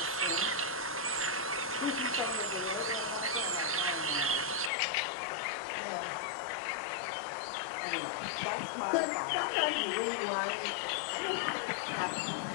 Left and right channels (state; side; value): drops out; right; at 4.7 s